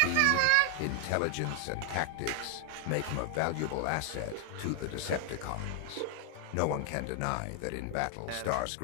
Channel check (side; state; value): both; different; correlation 0.00